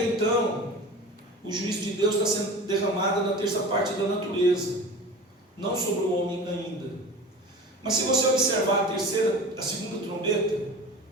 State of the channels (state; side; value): normal; both; correlation 0.35